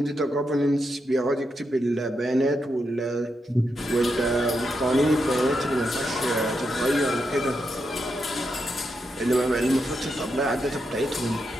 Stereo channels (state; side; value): normal; both; correlation 0.84